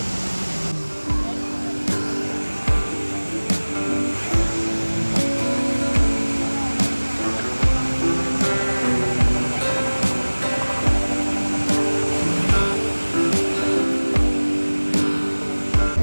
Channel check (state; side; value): inverted; both; correlation -1.00